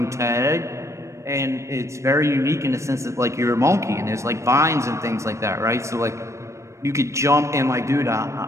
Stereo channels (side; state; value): left; late; 0.14 ms